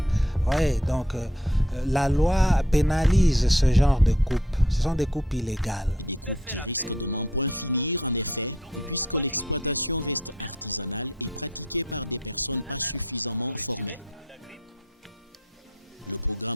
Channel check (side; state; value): both; normal; correlation 0.64